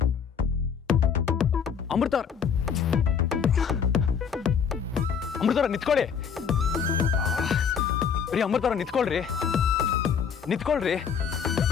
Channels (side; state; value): right; quieter; 7.0 dB